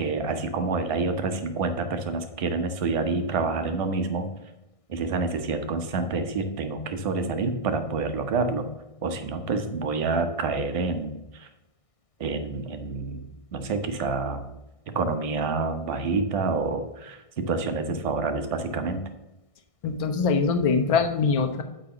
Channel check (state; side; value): late; right; 1.6 ms